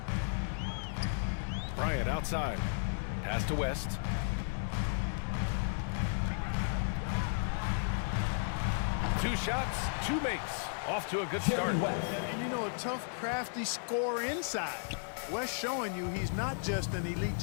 Bryant outside. Pass to West. Two shots, two makes. Off to a good start. And you know, a tough, crafty scorer inside. West showing you he's not just an elite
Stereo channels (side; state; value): right; silent; digital silence